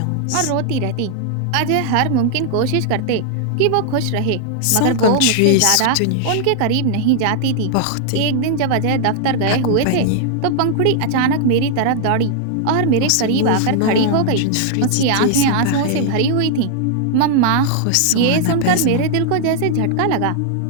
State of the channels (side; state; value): both; different; correlation -0.01